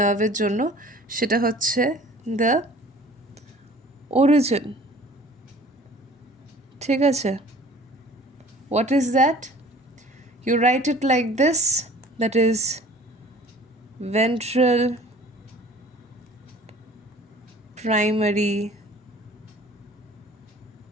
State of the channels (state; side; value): normal; both; correlation 0.49